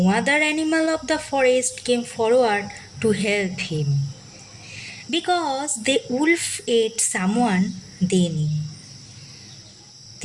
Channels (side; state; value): both; identical; correlation 1.00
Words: other animal of the forest came forward to help him, because the wolf ate someone they knew.